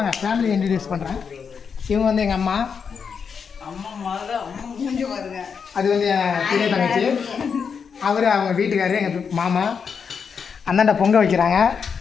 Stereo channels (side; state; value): right; quieter; 6.3 dB